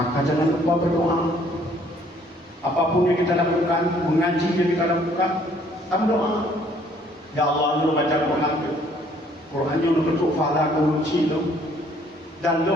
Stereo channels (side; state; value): both; normal; correlation 0.61